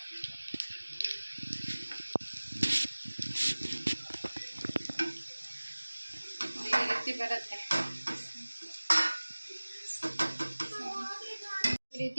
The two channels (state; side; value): inverted; both; correlation -1.00